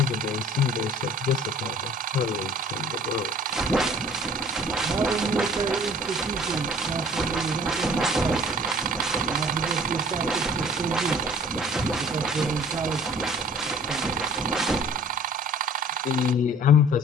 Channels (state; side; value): normal; both; correlation 0.51